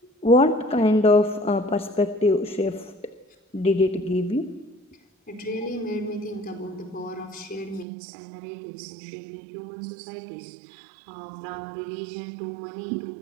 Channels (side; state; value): left; drops out; at 7.9 s